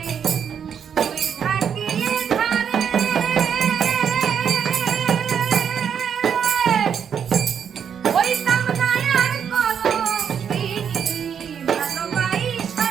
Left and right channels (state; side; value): quieter; left; 7.8 dB